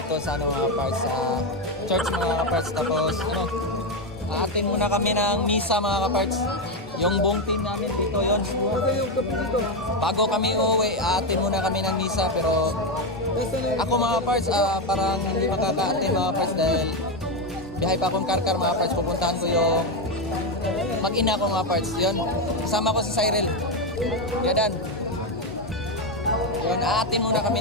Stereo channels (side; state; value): both; normal; correlation 0.08